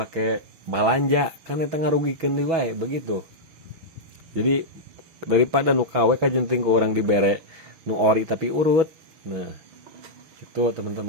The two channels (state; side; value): late; left; 6.2 ms